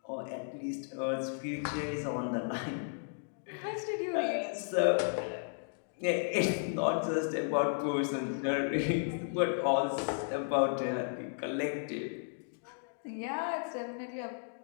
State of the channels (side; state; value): right; silent; digital silence